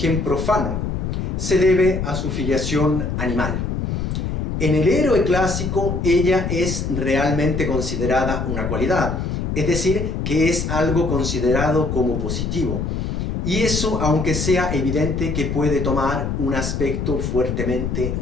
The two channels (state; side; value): noise; left; rumble, 2 dB below the sound